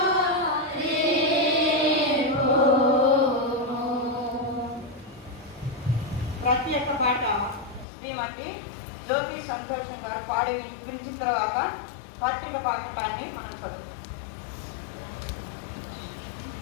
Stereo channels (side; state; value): right; drops out; at 7.9 s